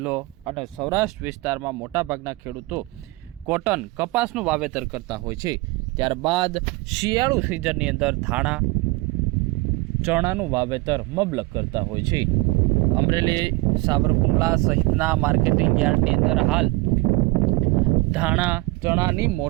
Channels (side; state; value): left; quieter; 22.4 dB